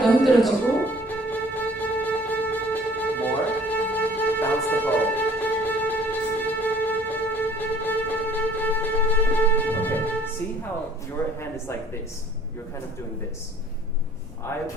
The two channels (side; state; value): both; normal; correlation 0.54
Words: 더 흔들어주고. More. Bounce the bow. Okay. See how your hand is like this? You're kind of doing this. I